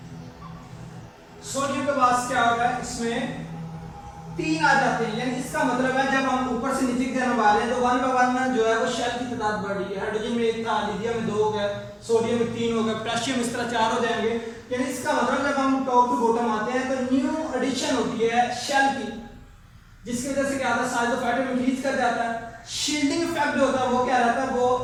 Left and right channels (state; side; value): identical; both; correlation 1.00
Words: सोडियम के पास क्या होगा, इसमें 3 आ जाते हैं। यानी इसका मतलब है जब हम ऊपर से नीचे की तरफ आ रहे हैं तो 1 बाय 1 जो है वो शेल की तादाद बढ़ रही है। हाइड्रोजन में 1 था, लिथियम में 2 हो गया, सोडियम में 3 हो गया, पोटेशियम इस तरह 4 हो जाएंगे। यानी इसका मतलब जब हम टॉप टू बॉटम आते हैं तो न्यू एडिशन होती है शेल की, जिसकी वजह से क्या होता है साइज ऑफ एटम इंक्रीज कर जाता है। शील्डिंग इफेक्ट जो होता है वो क्या रहता है,